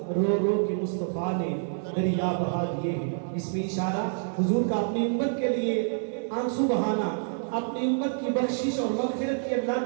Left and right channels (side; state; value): left; silent; digital silence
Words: رو رو کے مصطفیٰ نے دریا بہا دیے ہیں اس میں اشارہ حضور کا اپنی امت کے لیے آنسو بہانا اپنی امت کی بخشش اور مغفرت کی اللہ